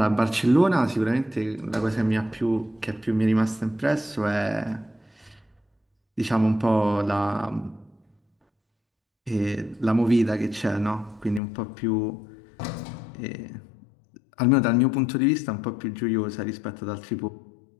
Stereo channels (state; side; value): drops out; right; at 11.4 s